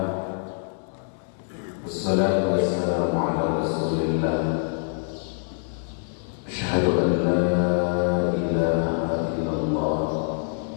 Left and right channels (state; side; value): silent; right; 62 dB below the other